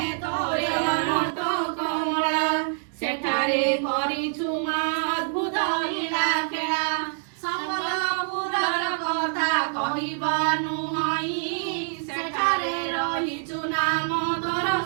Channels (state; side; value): silent; left; digital silence